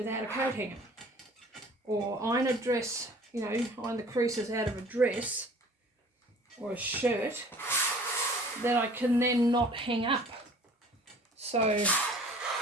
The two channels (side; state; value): both; normal; correlation 0.49